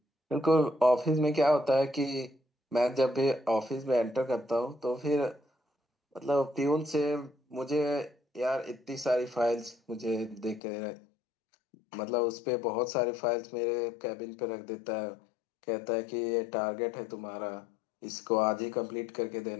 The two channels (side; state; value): right; drops out; at 10.6 s